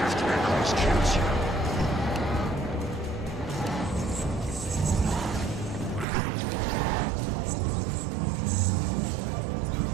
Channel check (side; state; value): left; drops out; at 6.1 s